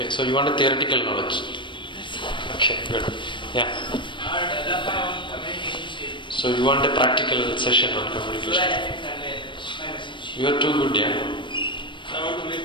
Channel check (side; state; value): right; late; 0.23 ms